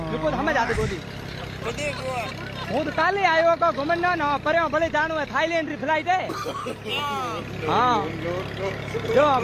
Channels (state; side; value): identical; both; correlation 1.00